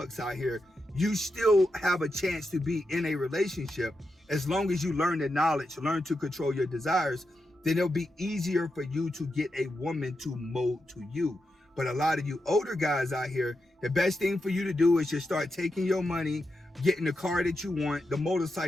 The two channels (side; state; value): both; normal; correlation 0.87